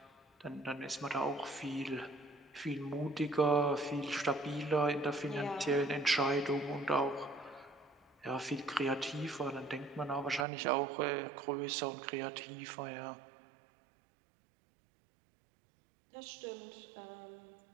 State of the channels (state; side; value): drops out; left; at 10.5 s